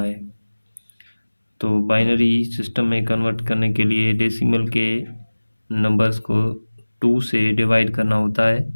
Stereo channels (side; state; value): both; inverted; correlation -1.00